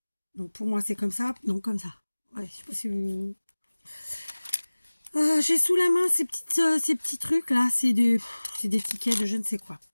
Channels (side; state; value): both; inverted; correlation -1.00